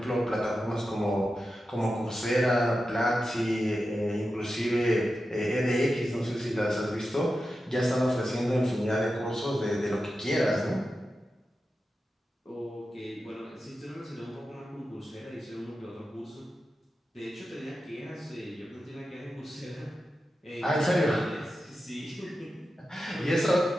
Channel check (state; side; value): normal; both; correlation 0.91